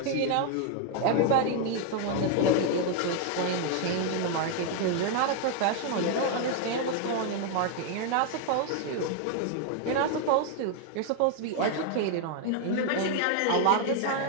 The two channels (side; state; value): both; different; correlation 0.00